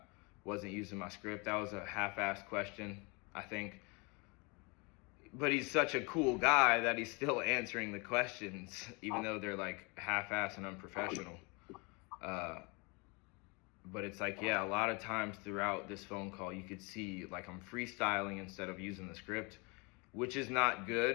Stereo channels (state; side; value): quieter; right; 29.7 dB